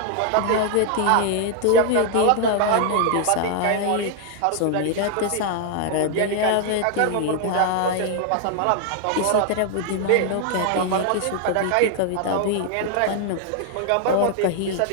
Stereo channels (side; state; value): both; different; correlation 0.00